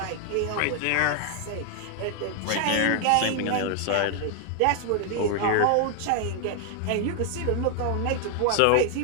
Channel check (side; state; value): both; different; correlation 0.00